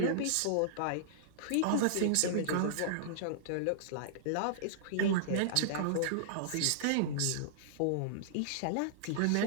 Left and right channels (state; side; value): different; both; correlation -0.02